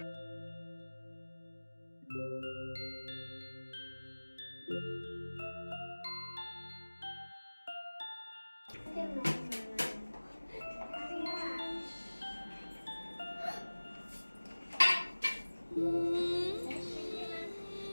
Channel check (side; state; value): both; inverted; correlation -1.00